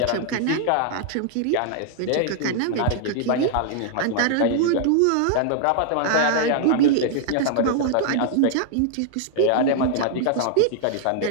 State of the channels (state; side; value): different; both; correlation -0.01